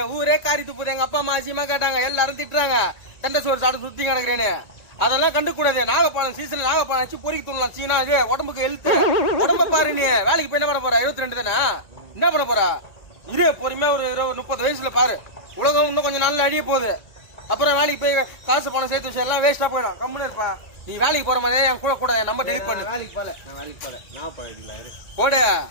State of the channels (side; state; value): right; late; 1.9 ms